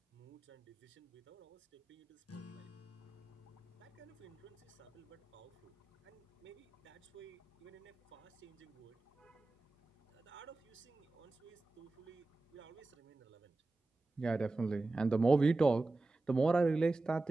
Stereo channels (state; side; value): quieter; left; 3.2 dB